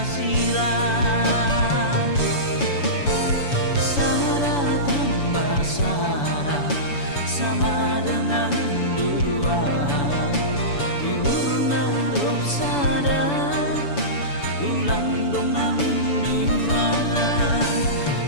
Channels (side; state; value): right; late; 7.0 ms